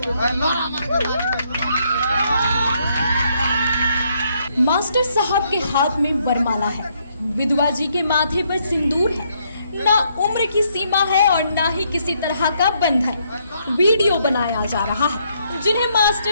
लोरा मार के मास्टर साहब के हाथ में वरमाला है, विधवा जी के माथे पर सिंदूर है, ना उम्र की सीमा है और ना ही किसी तरह का बंधन। वीडियो बनाया जा रहा है जिन्हें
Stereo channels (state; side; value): inverted; both; correlation -0.73